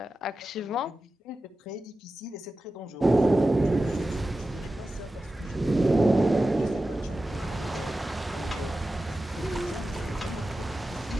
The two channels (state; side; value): normal; both; correlation 0.93